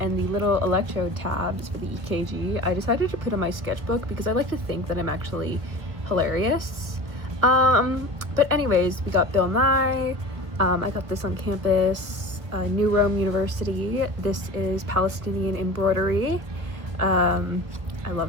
the little electrode tabs for the EKG, I decided to put in my sketchbook because I like to think that I'm actually hilarious. But anyways, we got Bill Nye. I got this on campus, New Rome University. This is Palestinian embroidery. I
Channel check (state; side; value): late; left; 1.2 ms